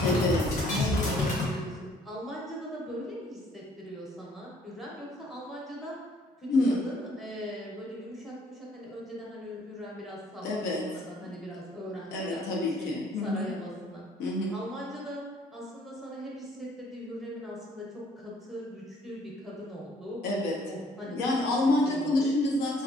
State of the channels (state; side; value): normal; both; correlation 0.62